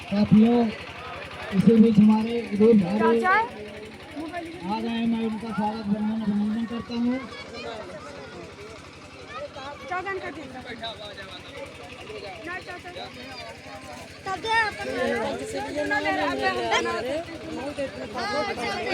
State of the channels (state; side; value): identical; both; correlation 1.00